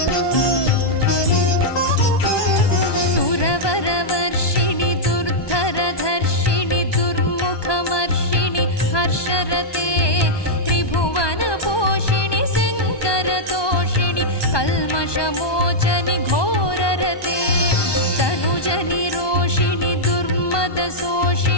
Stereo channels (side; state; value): right; late; 1.2 ms